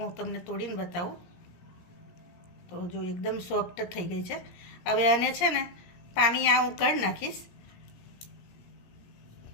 તમને તોડીને બતાવું. તો જો એકદમ સોફ્ટ થઈ ગઈ છે. હવે આને છે ને પાણી હું કાઢી નાખીશ.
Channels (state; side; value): late; right; 17 ms